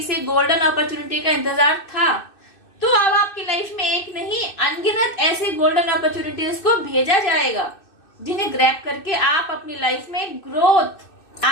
गोल्डन अपॉर्चुनिटी का इंतजार था, तो अब आपकी लाइफ में एक नहीं अनगिनत ऐसी गोल्डन अपॉर्चुनिटीज को भेजा जाएगा, जिन्हें ग्रैब करके आप अपनी लाइफ में ग्रोथ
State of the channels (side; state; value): right; late; 2.6 ms